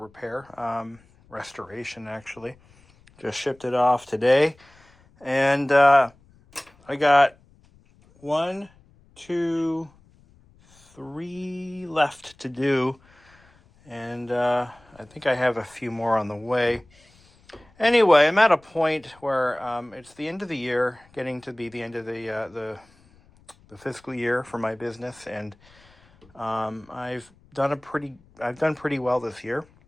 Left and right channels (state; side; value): noise; left; rumble, 29 dB below the sound